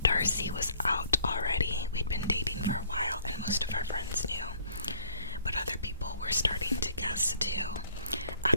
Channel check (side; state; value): both; inverted; correlation -0.58